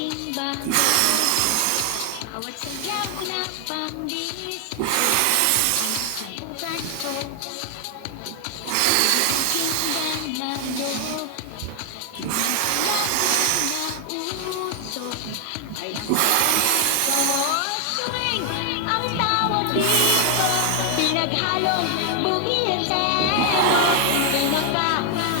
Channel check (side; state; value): both; different; correlation 0.00